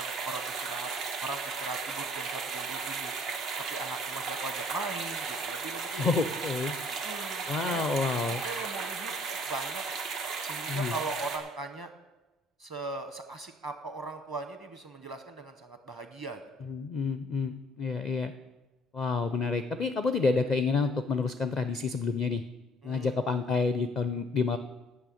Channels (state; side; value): normal; both; correlation 0.59